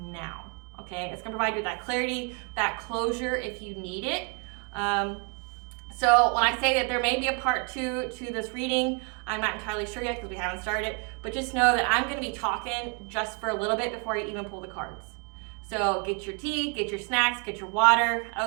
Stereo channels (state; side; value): quieter; left; 35.8 dB